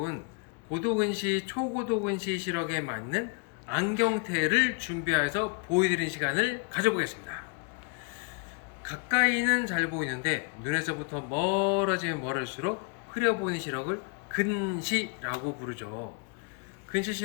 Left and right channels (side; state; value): right; quieter; 36.0 dB